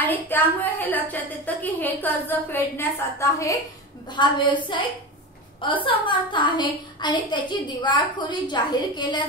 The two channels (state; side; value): normal; both; correlation 0.24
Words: त्यामुळे हे लक्षात येतं की हे कर्ज फेडण्यास आता हा व्यवसाय असमर्थ आहे आणि त्याची दिवाळखोरी जाहीर केल्या